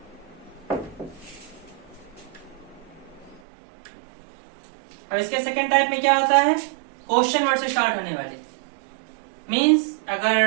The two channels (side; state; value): left; drops out; at 3.4 s